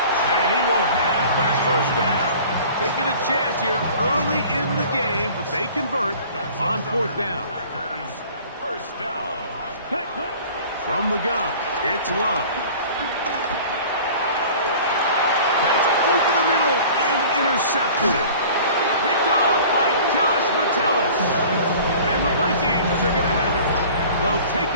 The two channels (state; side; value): inverted; both; correlation -0.45